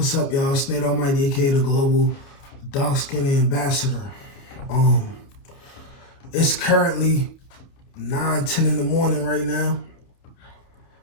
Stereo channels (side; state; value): right; late; 29 ms